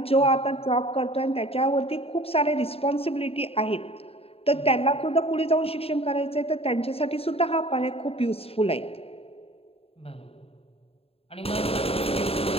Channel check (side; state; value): right; late; 0.28 ms